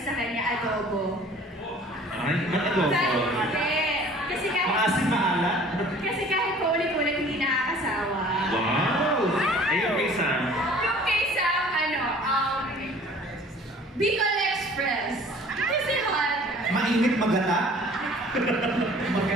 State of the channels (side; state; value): both; normal; correlation 0.50